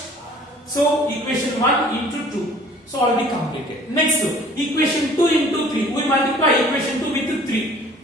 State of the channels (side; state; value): both; normal; correlation 0.51